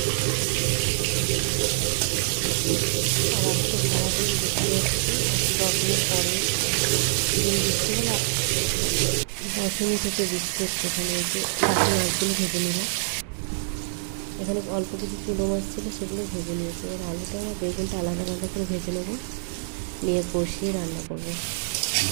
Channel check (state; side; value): silent; left; 61 dB below the other